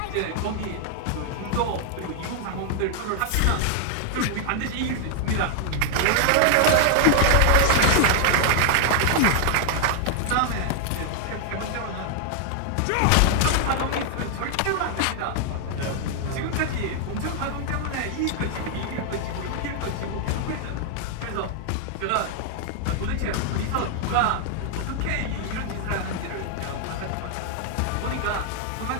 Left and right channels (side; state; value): both; different; correlation 0.00